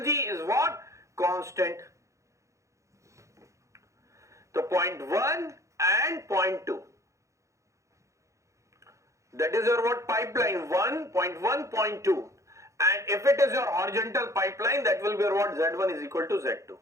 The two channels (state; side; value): late; left; 0.15 ms